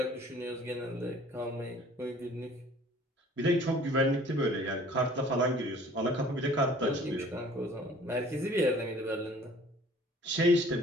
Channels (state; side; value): normal; both; correlation 0.52